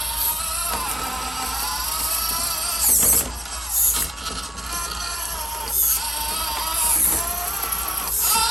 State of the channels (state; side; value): normal; both; correlation 0.89